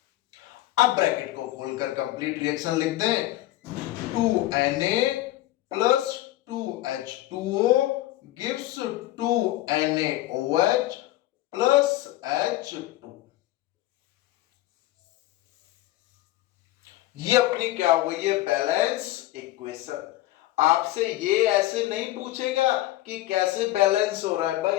अब ब्रैकेट को खोलकर कंप्लीट रिएक्शन लिख दें, 2Na plus 2H2O gives 2NaOH plus H2। ये अपनी क्या हो गई है, बैलेंस इक्वेशन। आपसे ये ऐसे नहीं पूछेगा कि कैसे बैलेंस हो रहा है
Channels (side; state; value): right; quieter; 15.9 dB